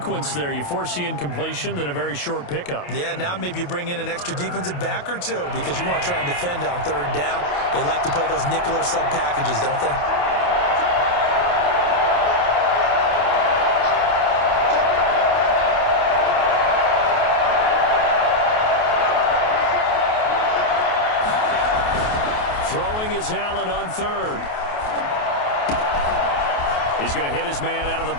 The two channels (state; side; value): late; right; 28 ms